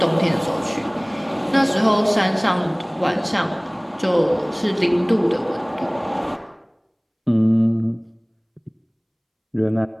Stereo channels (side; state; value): both; identical; correlation 1.00